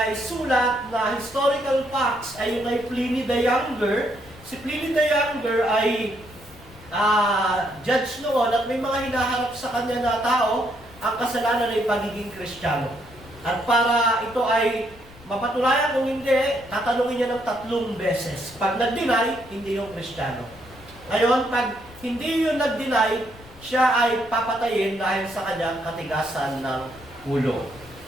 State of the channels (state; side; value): noise; left; rumble, 21 dB below the sound